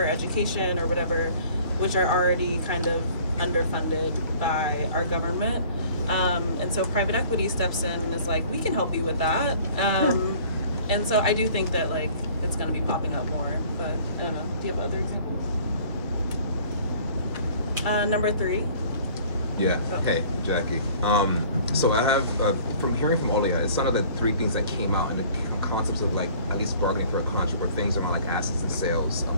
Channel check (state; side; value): inverted; both; correlation -0.52